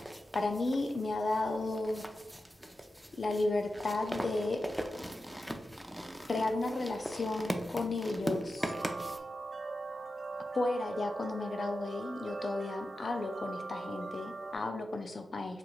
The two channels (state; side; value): normal; both; correlation 0.91